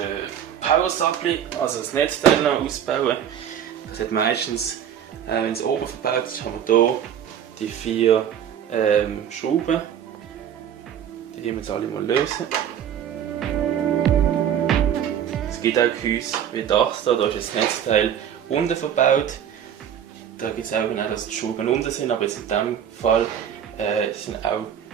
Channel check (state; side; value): quieter; left; 9.3 dB